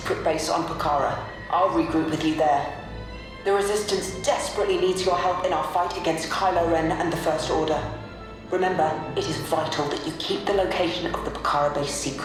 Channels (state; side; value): identical; both; correlation 1.00